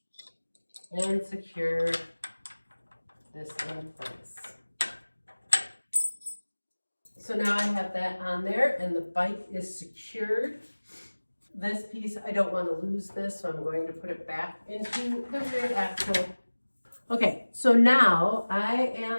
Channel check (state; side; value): inverted; both; correlation -1.00